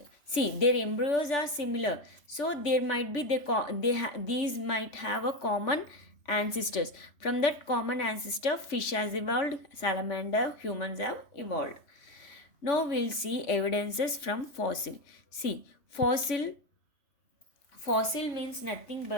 See, their embryos are similar, so there might be these might have a common ancestors. From that common ancestor, fish has evolved, salamander, humans have evolved. Now we'll see evidences from fossil. See, fossil means nothing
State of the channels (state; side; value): late; right; 3.5 ms